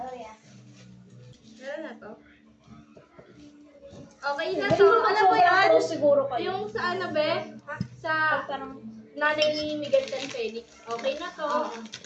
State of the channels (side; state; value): both; identical; correlation 1.00